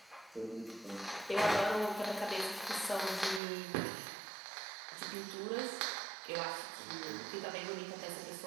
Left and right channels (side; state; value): left; drops out; at 3.4 s